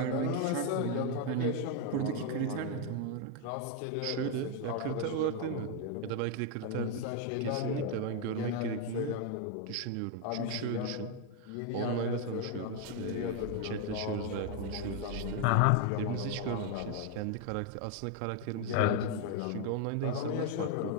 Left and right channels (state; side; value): different; both; correlation 0.01